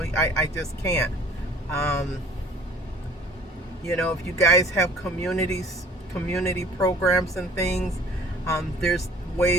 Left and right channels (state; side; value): normal; both; correlation 0.51